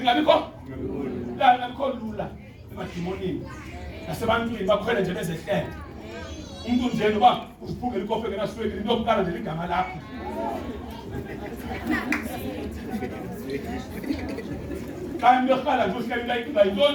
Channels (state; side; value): identical; both; correlation 1.00